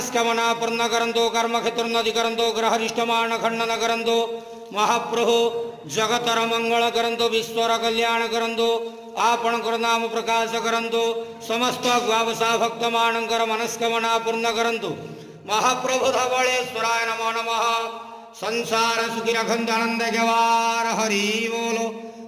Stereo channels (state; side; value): identical; both; correlation 1.00